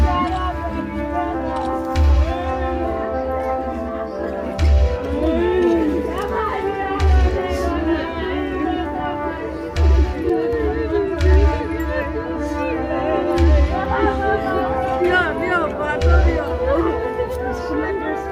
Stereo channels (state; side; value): identical; both; correlation 1.00